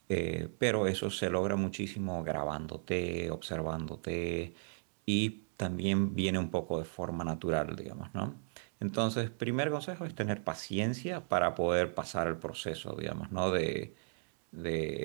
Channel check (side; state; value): left; silent; digital silence